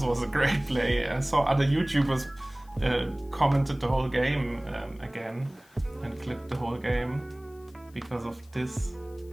was a great play. I saw other YouTubers commented the whole game again and clipped the whole game because of this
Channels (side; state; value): left; noise; hiss, 29 dB below the sound